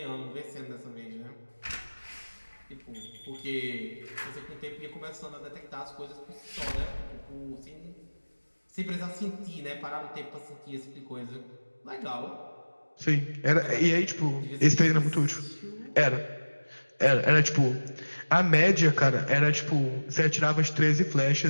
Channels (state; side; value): inverted; both; correlation -1.00